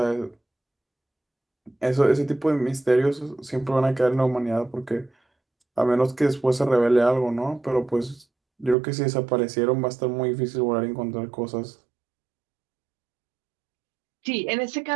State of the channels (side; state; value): left; drops out; at 8.8 s